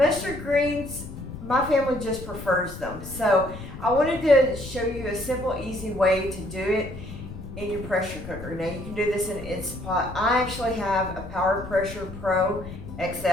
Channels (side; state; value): left; noise; rumble, 12 dB below the sound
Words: greens, my family just prefers them. So I wanted to show you a simple, easy way to do it in your pressure cooker. Now you can do this in an Instapot. I actually have a Power Pressure Pro